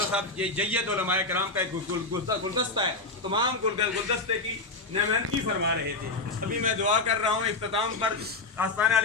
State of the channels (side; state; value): right; quieter; 3.4 dB